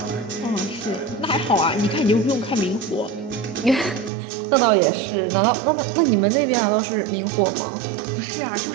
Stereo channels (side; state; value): left; drops out; at 4.1 s